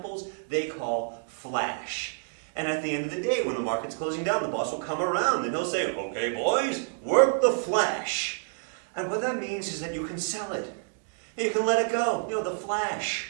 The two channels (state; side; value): silent; left; 59 dB below the other